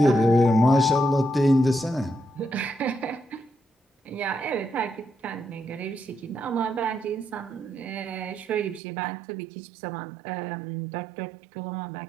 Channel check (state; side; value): drops out; left; at 8.8 s